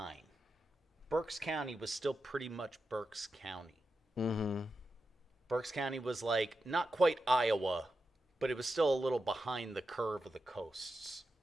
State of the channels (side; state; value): both; normal; correlation 0.89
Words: Berks County was still pretty much Berks County. Mm-hmm. Berks County was like, not quite Iowa, but it was still a little behind the curve of the coasts,